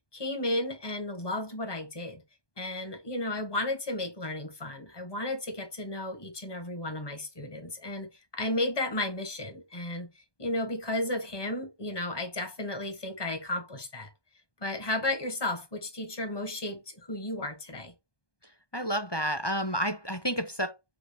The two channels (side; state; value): right; late; 1.2 ms